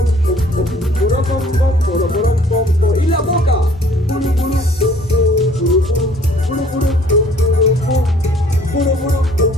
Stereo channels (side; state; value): both; normal; correlation 0.57